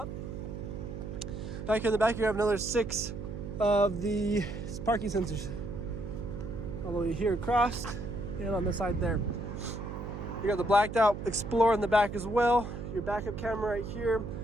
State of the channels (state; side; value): noise; right; hum, 7 dB below the sound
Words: Back in the back, you have another 6 of the parking sensors all the way here across and on the side there. You got the blacked out Explorer in the back as well. Your backup camera right here.